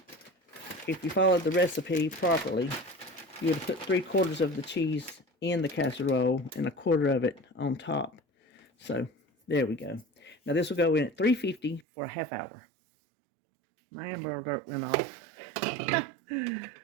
If you followed the recipe properly, you would have put 3/4 of the cheese in the casserole and 1/4 of it on top. So there we go. Now this will go in at 350 for a half hour. My Amber Alert went off.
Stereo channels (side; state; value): left; drops out; at 11.9 s